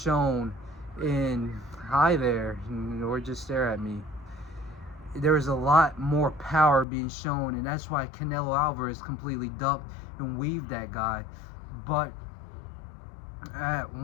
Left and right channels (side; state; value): right; drops out; at 6.9 s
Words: in hi there, or just stare at me. There was a lot more power being shown, and that's why Canelo Alvarez completely ducked and weaved that guy. But at